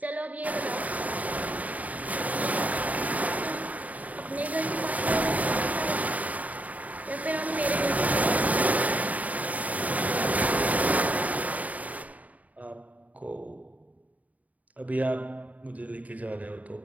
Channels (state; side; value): late; left; 0.072 ms